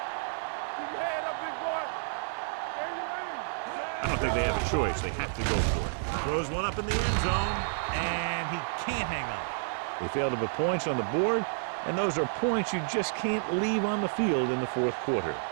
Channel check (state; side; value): silent; left; 58 dB below the other